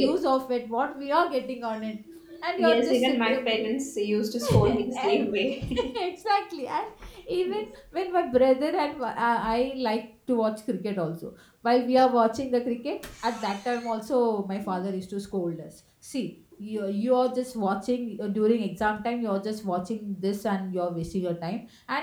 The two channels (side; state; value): both; identical; correlation 1.00